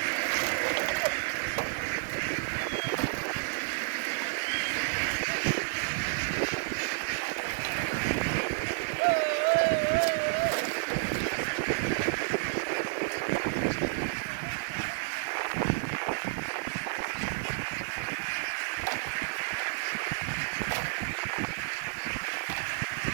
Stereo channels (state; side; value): silent; left; digital silence